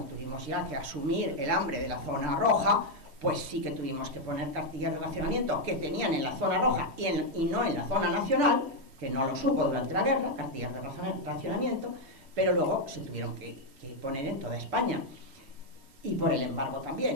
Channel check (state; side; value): late; left; 3.1 ms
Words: tuvimos ya que asumir el hambre de la zona roja, pues sí que tuvimos que poner cartillas de racionamiento que tenían en la zona roja y no en la zona nacional, que no lo supo durante la guerra, cartillas de racionamiento, pero luego se tuvieron que poner en toda España, y por el embargo